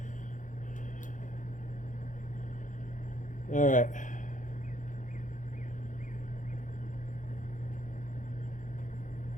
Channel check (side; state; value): right; late; 0.37 ms